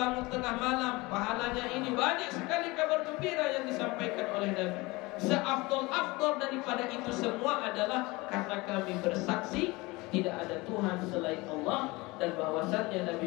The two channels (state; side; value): quieter; right; 23.0 dB